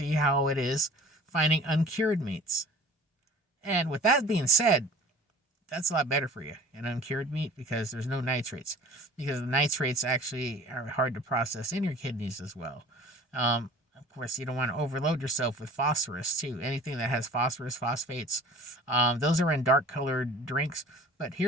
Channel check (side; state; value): both; normal; correlation 0.44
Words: how it is finding uncured meats. And with that being said, that's a lot better for you, an uncured meat, because there's no nitrates. Because the nitrates actually are hard to process in your kidneys as well. Of course, you don't want to overload yourself with phosphorus, too. Anything that has phosphorus, phosphates, those are in dark-colored drinks. But